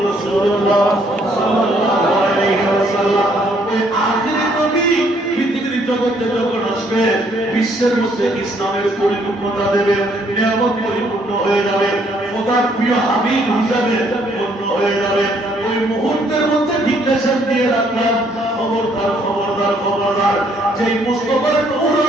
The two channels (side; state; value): both; normal; correlation 0.67